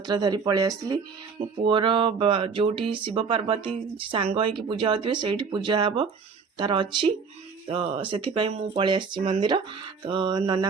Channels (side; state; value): left; quieter; 5.4 dB